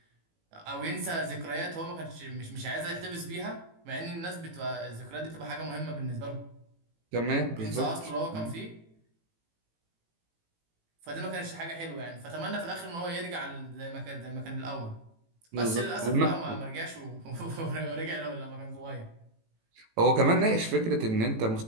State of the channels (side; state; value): left; late; 18 ms